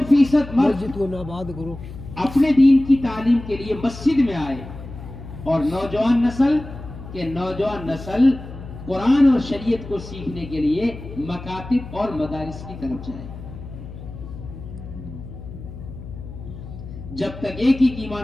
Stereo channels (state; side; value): noise; left; hum, 13 dB below the sound